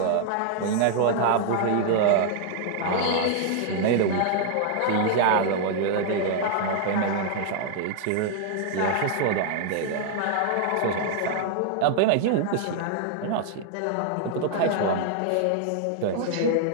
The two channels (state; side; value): different; both; correlation -0.01